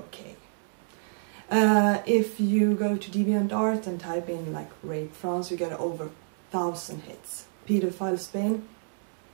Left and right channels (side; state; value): left; silent; 59 dB below the other